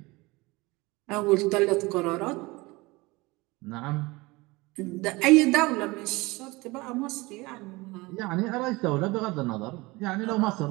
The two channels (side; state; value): left; quieter; 22.8 dB